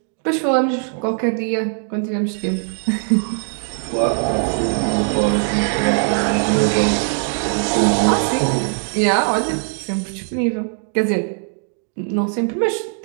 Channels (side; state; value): left; silent; 58 dB below the other